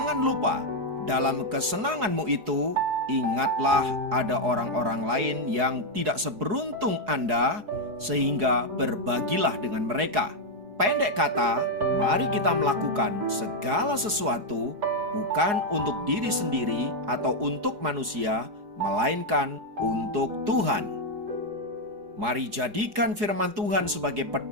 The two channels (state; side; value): late; left; 4.8 ms